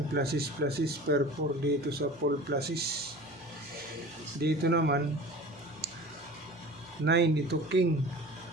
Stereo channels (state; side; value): normal; both; correlation 0.39